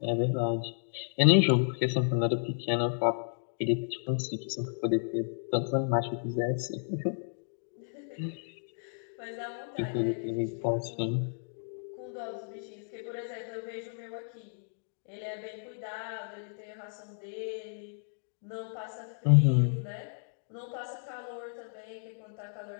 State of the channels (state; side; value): silent; right; digital silence